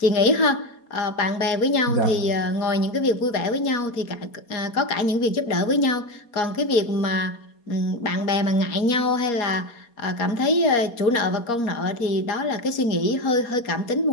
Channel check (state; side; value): late; right; 4.3 ms